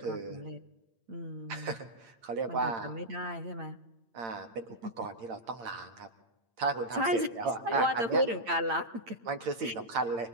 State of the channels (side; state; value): left; late; 8.8 ms